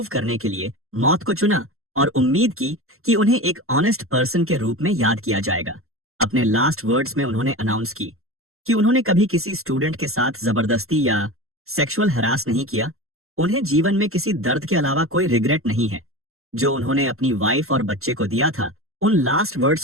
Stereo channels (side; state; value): left; late; 0.62 ms